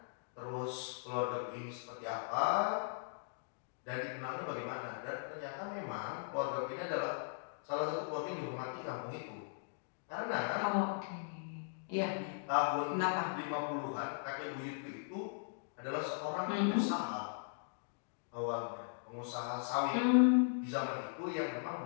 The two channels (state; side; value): silent; right; digital silence